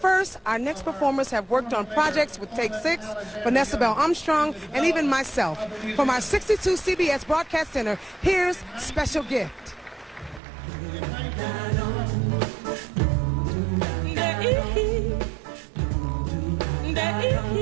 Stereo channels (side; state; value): left; drops out; at 10.4 s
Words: our next performers have worked on projects with Take 6, Vanessa Bell Armstrong, and even myself. From our 62 CBS Broadcast Center, here's Special Gift.